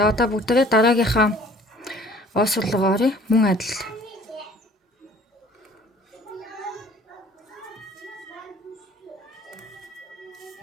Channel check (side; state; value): both; normal; correlation 0.53